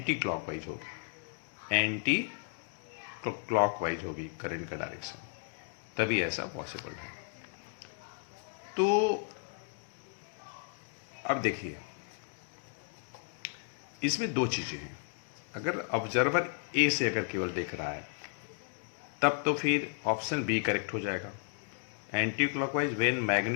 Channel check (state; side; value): silent; right; 55 dB below the other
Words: क्लॉकवाइज होगी, एंटी क्लॉकवाइज होगी करंट का डायरेक्शन, तभी ऐसा पॉसिबल है। तो अब देखिए, इसमें दो चीज़ें हैं। अगर ऑब्जर्वर ए से अगर केवल देख रहा है तब तो फिर ऑप्शन बी करेक्ट हो जाएगा, anti clockwise when